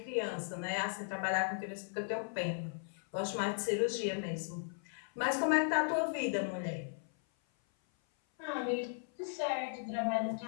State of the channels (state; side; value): silent; right; 53 dB below the other